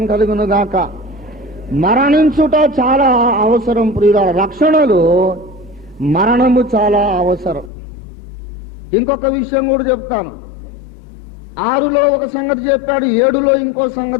కలుగును గాక. మరణించుట చాలా అవసరం ప్రియులారా. రక్షణలో మరణము చాలా అవసరం. ఇంకొక విషయం కూడా చెప్తాను. 6లో ఒక సంగతి చెప్పాడు, 7లో ఇంకో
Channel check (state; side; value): drops out; right; at 7.7 s